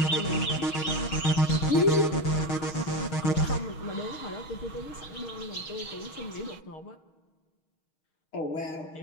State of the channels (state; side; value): late; right; 6.4 ms